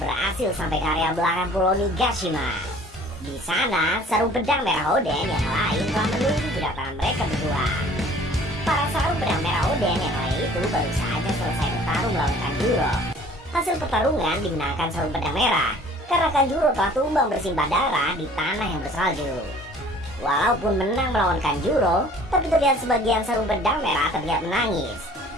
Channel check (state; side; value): normal; both; correlation 0.51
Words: sampai ke area belakang Pulau Nigashima. Di sana, sarung pedang merah Oden yang lain telah menunggu kedatangan mereka berdua. Para sarung pedang merah Oden yang lain itu baru saja selesai bertarung melawan Kanjuro. Hasil pertarungan dimenangkan sarung pedang merah karena Kanjuro telah tumbang bersimbah darah di tanah yang bersalju. Walaupun menang melawan Kanjuro, tapi terlihat sebagian sarung pedang merah terlihat menangis.